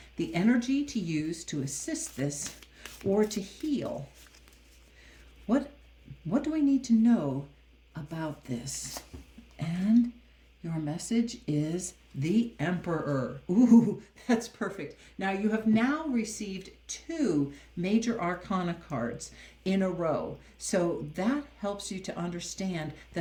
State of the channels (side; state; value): both; identical; correlation 1.00